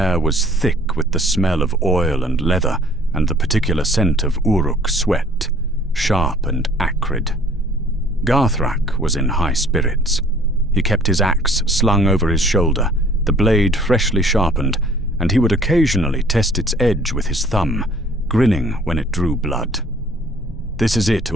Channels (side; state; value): both; normal; correlation 0.54